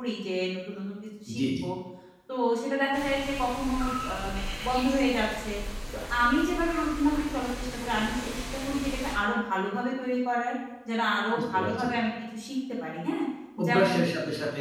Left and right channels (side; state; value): both; identical; correlation 1.00